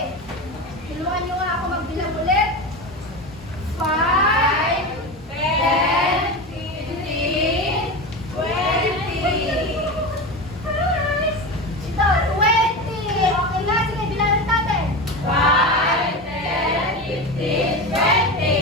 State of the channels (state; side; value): normal; both; correlation 0.23